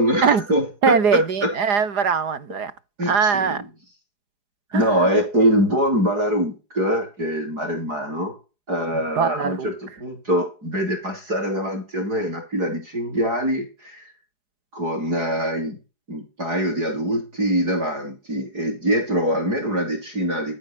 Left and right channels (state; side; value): late; left; 4.9 ms